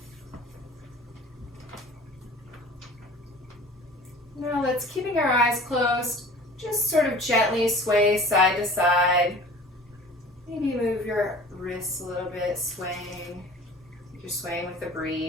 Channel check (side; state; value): both; normal; correlation 0.44